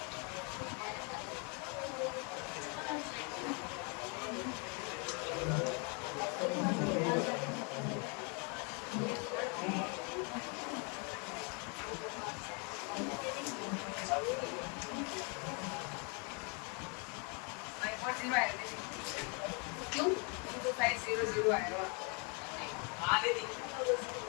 क्यों? 500 आएगा। हाँ दीदी।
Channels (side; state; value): right; quieter; 34.9 dB